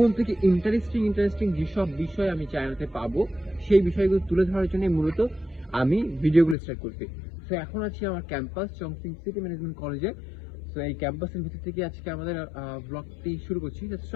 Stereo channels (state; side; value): drops out; right; at 6.6 s